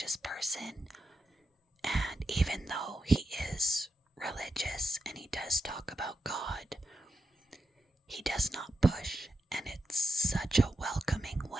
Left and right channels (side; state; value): both; normal; correlation 0.86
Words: person, and even though he is religious and he does talk about God, he does not push, and it's such a welcoming